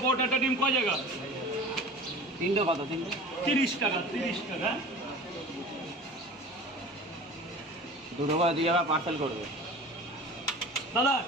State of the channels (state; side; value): normal; both; correlation 0.38